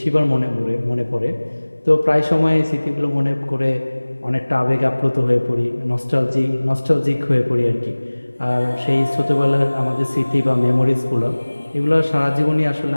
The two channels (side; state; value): both; inverted; correlation -1.00